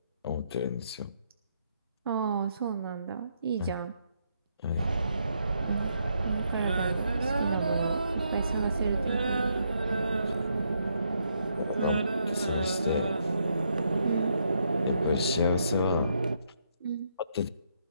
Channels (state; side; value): inverted; both; correlation -0.76